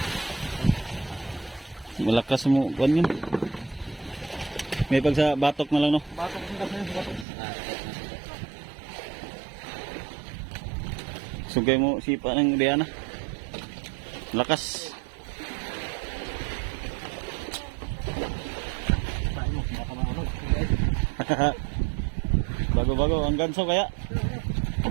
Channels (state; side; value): drops out; left; at 7.2 s